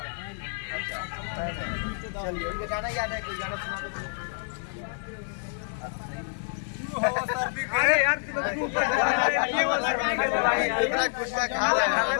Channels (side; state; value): right; silent; digital silence